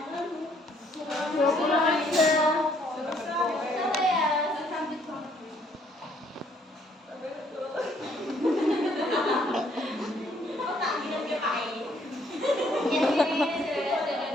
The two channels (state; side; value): normal; both; correlation 0.66